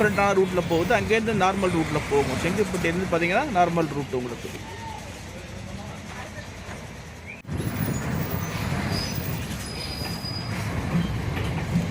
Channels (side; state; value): both; identical; correlation 1.00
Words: ரூட்டில் போகுது. அங்கேருந்து நார்மல் ரூட்டில் போகும். செங்கிப்பட்டியிலேருந்து பார்த்தீங்கன்னா நார்மல் ரூட் உங்களுக்கு.